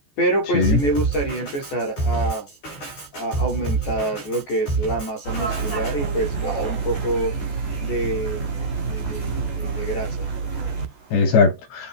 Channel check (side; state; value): right; late; 14 ms